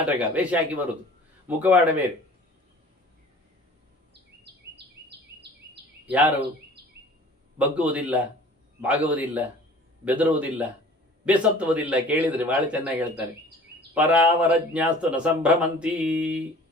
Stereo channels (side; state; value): both; normal; correlation 0.47